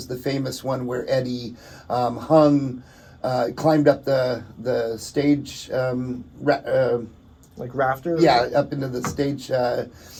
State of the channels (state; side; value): identical; both; correlation 1.00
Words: the famous one where Eddie climbed up the stage, like rafters. Yeah, up into the stage